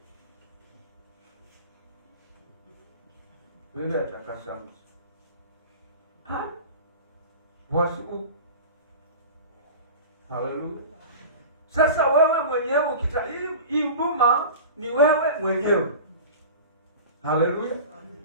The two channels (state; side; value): inverted; both; correlation -0.35